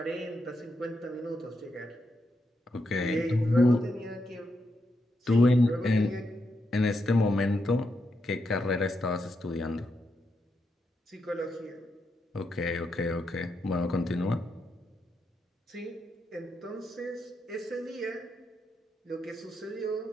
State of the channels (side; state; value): both; normal; correlation 0.83